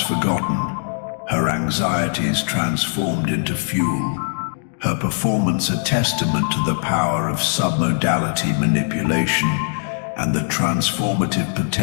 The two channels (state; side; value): silent; right; digital silence